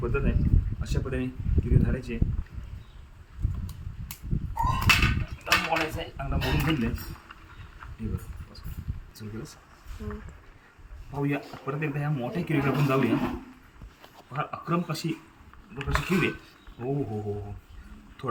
पद्धत आहे. अशा पद्धतीने किरवी धरायची. मोडायचं आहे, चांगला मोडून घेतले. हे बरं सुरू केलंस. पाहूया परत एकदा ह्या मोठ्या किरवीला आपण जाऊया. फार अक्रम कशी किरवी. हो हो हो हो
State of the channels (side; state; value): both; identical; correlation 1.00